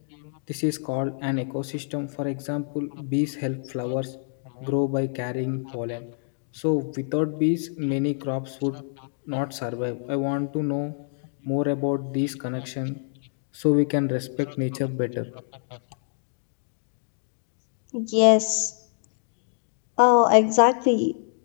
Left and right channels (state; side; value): silent; right; digital silence